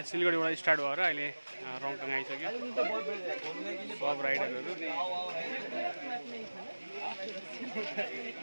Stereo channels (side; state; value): both; inverted; correlation -1.00